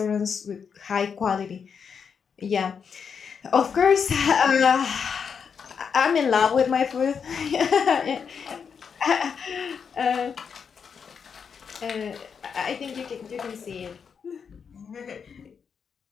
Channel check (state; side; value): quieter; right; 6.5 dB